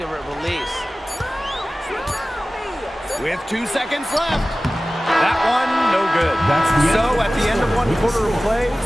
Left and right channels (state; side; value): normal; both; correlation 0.97